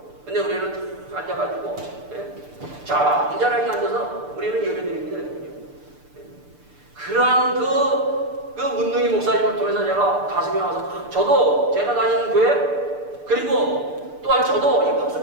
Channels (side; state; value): left; late; 6.8 ms